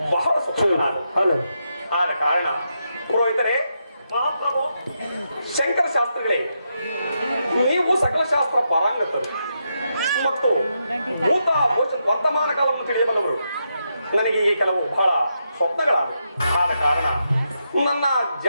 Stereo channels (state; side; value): inverted; both; correlation -0.83